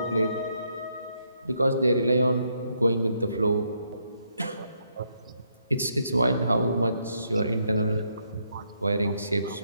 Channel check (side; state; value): both; inverted; correlation -0.75